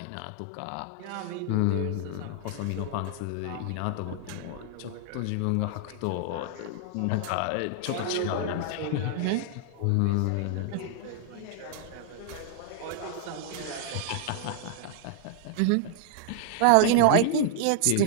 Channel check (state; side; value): different; both; correlation 0.00